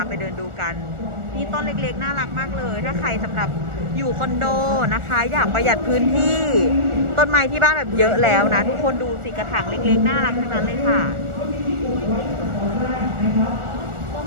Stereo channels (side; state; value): left; late; 1.4 ms